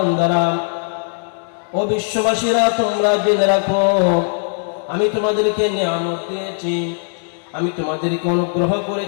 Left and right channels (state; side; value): silent; right; digital silence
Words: ও বিশ্ববাসীরা, তোমরা জেনে রাখো আমি তোমাদেরকে নিয়ামত দিয়েছি, আমি তোমাদেরকে অনুগ্রহ